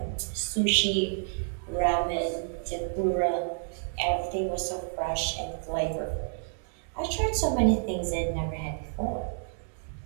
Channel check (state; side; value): silent; left; digital silence